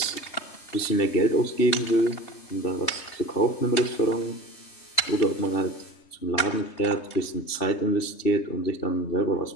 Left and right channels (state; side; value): late; right; 3.3 ms